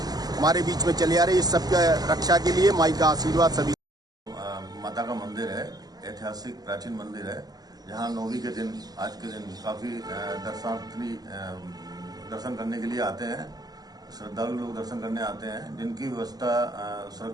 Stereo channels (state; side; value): late; left; 0.19 ms